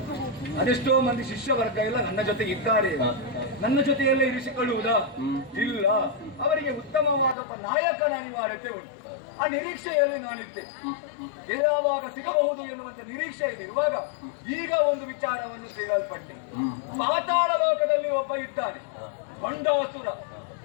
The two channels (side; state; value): right; drops out; at 7.4 s